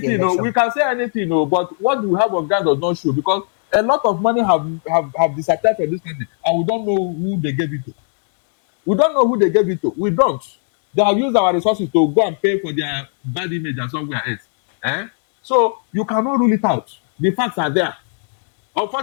we can say anything, but what we have of God does not show because a lot of money have disappeared from this country and we don't know who they gave it to. We don't know who they gave it to. We don't. They have used our resources to go and pay for their bad image and somewhere else. So you cannot rule it out. The facts are there.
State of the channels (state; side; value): silent; right; 58 dB below the other